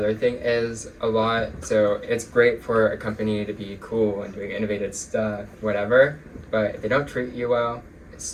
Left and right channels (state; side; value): identical; both; correlation 1.00